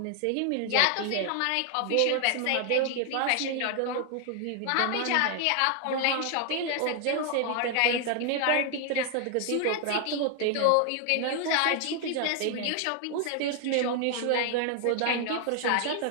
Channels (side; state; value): both; different; correlation 0.00